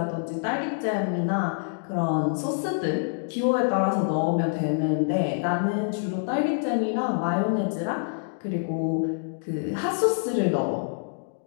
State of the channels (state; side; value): silent; right; digital silence